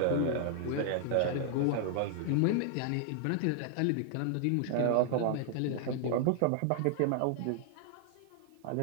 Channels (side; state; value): both; different; correlation 0.00